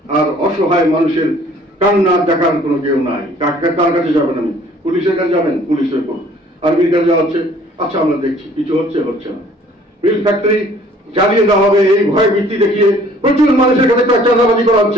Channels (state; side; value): normal; both; correlation 0.56